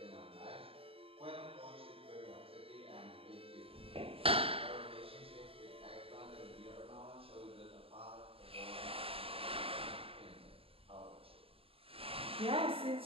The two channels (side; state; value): left; late; 0.27 ms